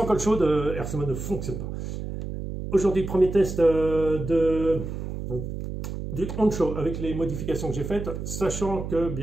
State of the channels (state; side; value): noise; right; hum, 6 dB below the sound